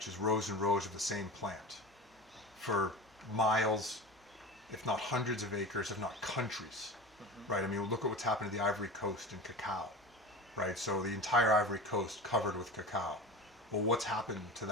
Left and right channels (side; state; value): both; normal; correlation 0.30